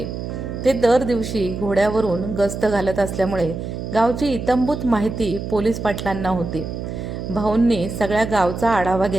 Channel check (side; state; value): right; noise; hum, 6 dB below the sound